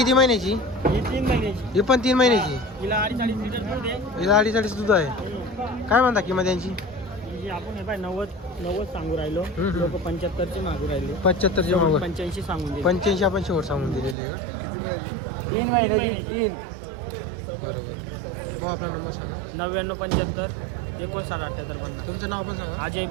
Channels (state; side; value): drops out; left; at 14.2 s